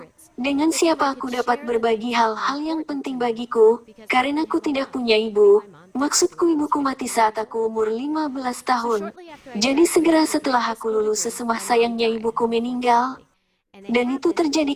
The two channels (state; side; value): identical; both; correlation 1.00